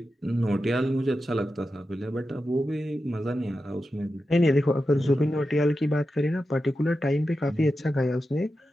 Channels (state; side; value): normal; both; correlation 0.91